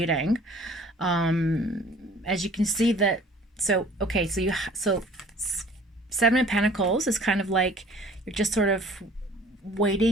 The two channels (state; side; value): normal; both; correlation 0.52